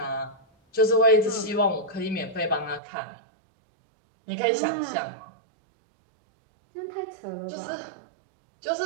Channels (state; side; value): drops out; left; at 2.8 s